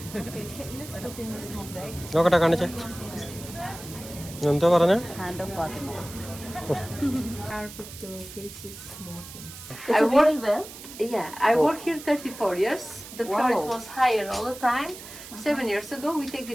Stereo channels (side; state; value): right; noise; hiss, 14 dB below the sound